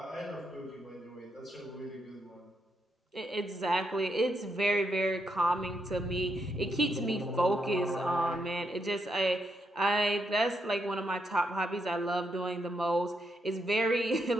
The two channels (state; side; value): normal; both; correlation 0.80